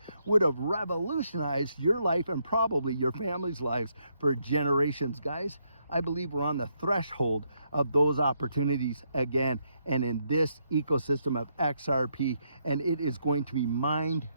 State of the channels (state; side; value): inverted; both; correlation -0.77